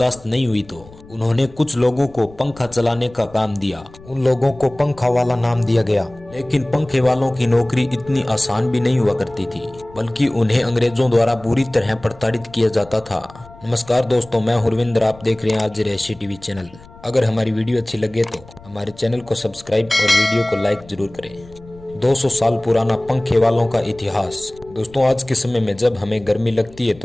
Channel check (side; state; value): left; noise; rumble, 22 dB below the sound